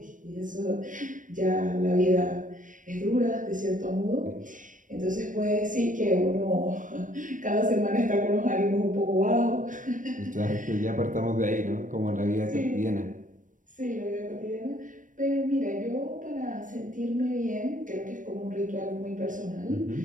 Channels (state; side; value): late; left; 0.38 ms